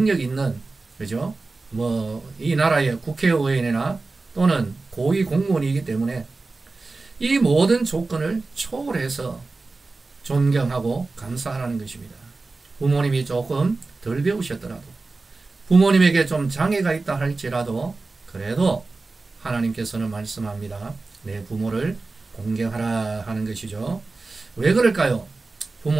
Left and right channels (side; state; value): left; quieter; 3.6 dB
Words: 있는, 그죠? 이 나라의 국회의원이나 또는 고위 공무원이기 때문에 이 모든 조건을 초월해서 존경하고 감사하라는 것입니다. 부모님이 조금 덜 배우셨더라도, 부모님에게 좀 장애가 있다 할지라도, 그래도 하나님께서는 말씀합니다. 내 부모를 공경하라 하는 것이죠. 왜 그럴까요?